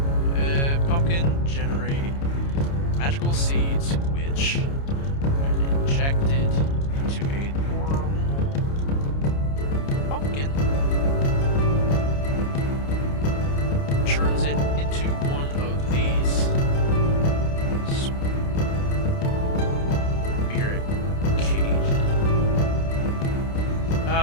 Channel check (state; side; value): late; right; 29 ms